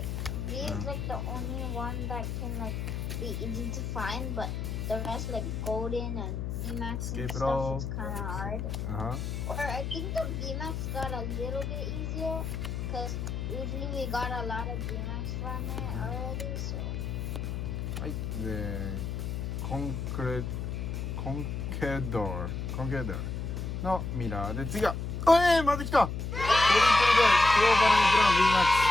is like the only one that can like be easy to find, but the rest like Golden and Vmax and stuff is kind of hard. Or I think the Vmax got a little bit easier because usually we got a lot of Vmax from it already. So. はい。で、コンケドーのミラーで次はまた来たトリプルでクローバルの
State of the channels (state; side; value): noise; left; hum, 3 dB below the sound